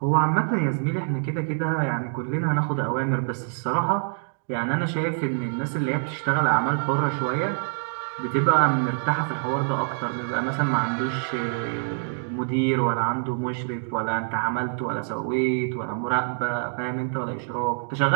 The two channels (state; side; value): silent; left; digital silence